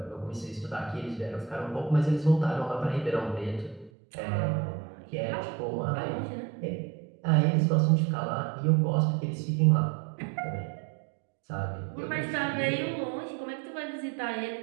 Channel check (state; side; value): drops out; left; at 3.9 s